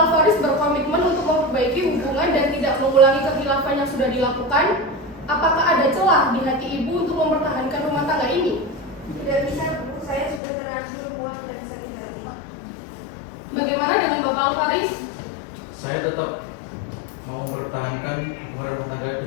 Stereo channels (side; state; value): right; drops out; at 10.4 s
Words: berkomitmen untuk memperbaiki hubungan dan tidak mengulangi kekhilafan yang sudah dilakukan, apakah ada celah di hati Ibu untuk mempertahankan rumah tangga ini? Tidak bisa, Bu. Saya sudah terlanjur muak dan sakit hati. Bagaimana dengan Bapak Alvaris? Saya tetap mau mempertahankan hubungan rumah tangga